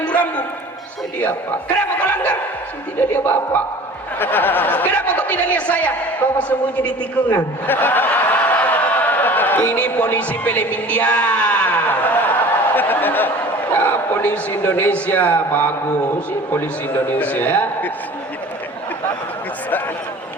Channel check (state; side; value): normal; both; correlation 0.43